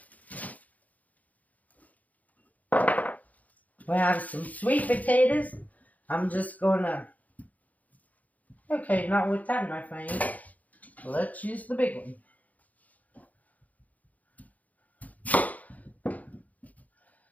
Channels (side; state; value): right; late; 0.076 ms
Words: We have some sweet potatoes. I'm just gonna, okay, not with that in my face. Let's use the big one.